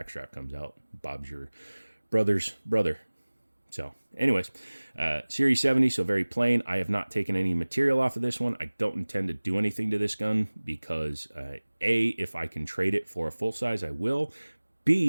strap comes out. Bob's your brother's brother. So anyways, Series 70, so very plain. I have not taken any material off of this one. I don't intend to do anything to this gun because A, if I can trade it for a full size, I will.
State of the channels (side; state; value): both; inverted; correlation -1.00